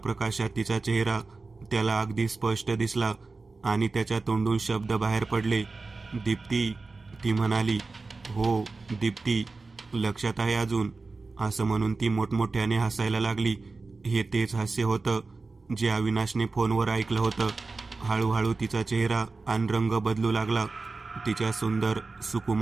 तिचा चेहरा त्याला अगदी स्पष्ट दिसला आणि त्याच्या तोंडून शब्द बाहेर पडले. दीप्ती, ती म्हणाली. हो दीप्ती, लक्षात आहे अजून, असं म्हणून ती मोठमोठ्याने हसायला लागली. हे तेच हास्य होतं जे अविनाशने फोनवर ऐकलं होतं. हळूहळू तिचा चेहरा आणि रंग बदलू लागला. तिच्या सुंदर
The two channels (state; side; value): quieter; left; 3.8 dB